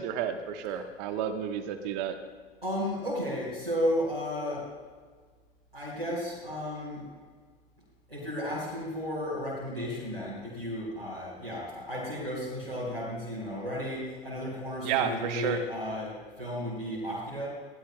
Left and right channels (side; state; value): both; normal; correlation 0.33